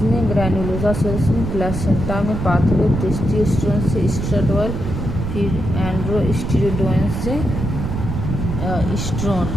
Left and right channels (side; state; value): right; noise; rumble, 4 dB below the sound